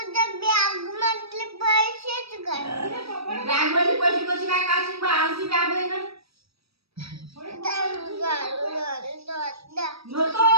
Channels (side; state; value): left; late; 0.77 ms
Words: बॅग मध्ये पैसे कशी काय काढशील बा आमची बॅग आहे ना नको